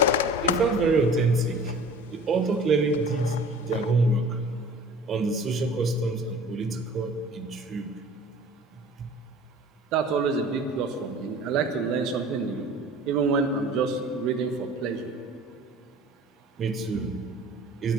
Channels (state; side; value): normal; both; correlation 0.44